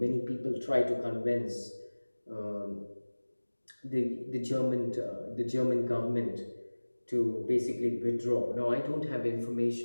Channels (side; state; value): both; inverted; correlation -1.00